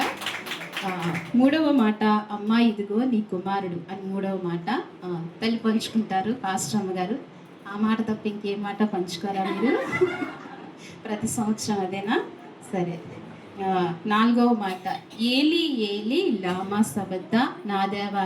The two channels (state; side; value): identical; both; correlation 1.00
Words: మూడవ మాట, అమ్మా ఇదిగో నీ కుమారుడు అని మూడవ మాట తల్లి పంచుకుంటారు, పాస్టమ్మ గారు. ఆ మాట తప్ప ఇంకే మాట పంచుకోరా మీరు? ప్రతి సంవత్సరం అదేనా? సరే. నాలుగవ మాట, ఏలి ఏలి లామా సబద్ద, నా దేవా